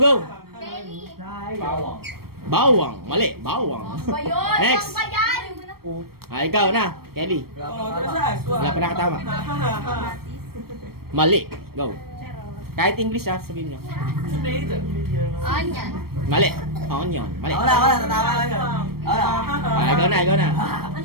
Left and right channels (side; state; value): left; late; 0.94 ms